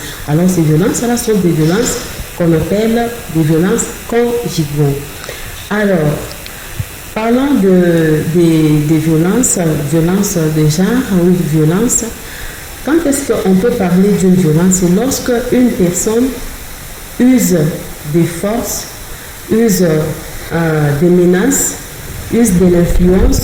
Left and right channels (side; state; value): both; identical; correlation 1.00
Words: Alors ces violences-là sont des violences qu'on appelle des violences conjugaux. Alors, parlant des violences de genre ou de violence, quand est-ce qu'on peut parler d'une violence? C'est lorsque une personne use des forces, use des menaces, use de